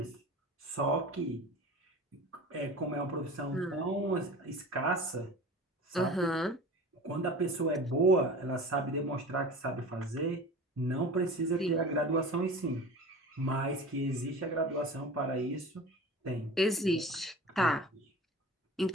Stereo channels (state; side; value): normal; both; correlation 0.36